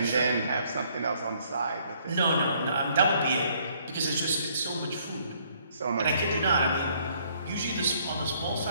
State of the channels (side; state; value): both; inverted; correlation -0.65